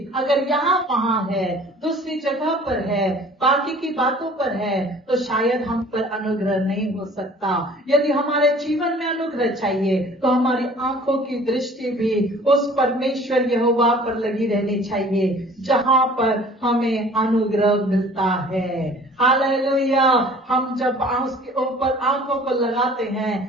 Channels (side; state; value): both; normal; correlation 0.49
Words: अगर यहाँ वहाँ है, दूसरी जगह पर है, बाकी की बातों पर है, तो शायद हम पर अनुग्रह नहीं हो सकता। यदि हमारे जीवन में अनुग्रह चाहिए तो हमारी आंखों की दृष्टि भी उस परमेश्वर यहोवा पर लगी रहनी चाहिए जहाँ पर हमें अनुग्रह मिलता है। हालेलुया। हम जब उसके ऊपर आंखों को लगाते